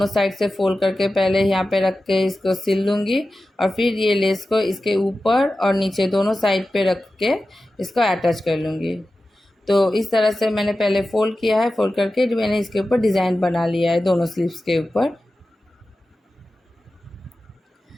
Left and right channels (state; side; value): normal; both; correlation 0.94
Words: साइड से फोल्ड करके पहले यहाँ पे रख के इसको सिल लूँगी और फिर ये लेस को इसके ऊपर और नीचे दोनों साइड पे रख के इसको अटैच कर लूँगी। तो इस तरह से मैंने पहले फ़ोल्ड किया है, फ़ोल्ड करके मैंने इसके ऊपर डिज़ाइन बना लिया है दोनों स्लीव्स के ऊपर।